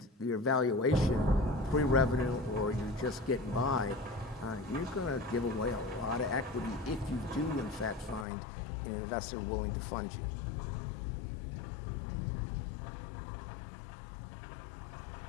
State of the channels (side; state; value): right; drops out; at 8.2 s